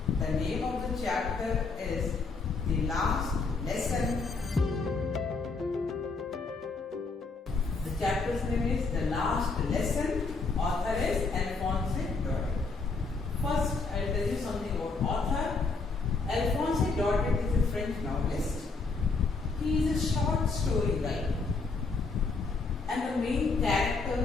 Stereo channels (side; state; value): right; quieter; 4.1 dB